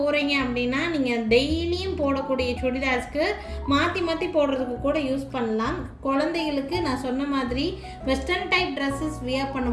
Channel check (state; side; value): identical; both; correlation 1.00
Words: அப்படின்னா நீங்கள் டெய்லியும் போடக்கூடிய சுடிதார்ஸ்க்கு மாற்றி மாற்றி போடுறதுக்கு கூட யூஸ் பண்ணலாம். குழந்தைகளுக்கு நான் சொன்ன மாதிரி வெஸ்டர்ன் டைப் ட்ரெஸ்ஸஸ் வியர்